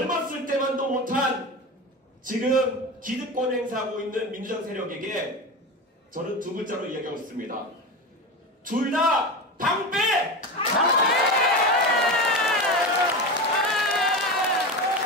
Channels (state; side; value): normal; both; correlation 0.23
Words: 때만도 못한 지금 기득권 행사하고 있는 민주당 세력에게 저는 두 글자로 이야기하고 있습니다. 둘 다 방패!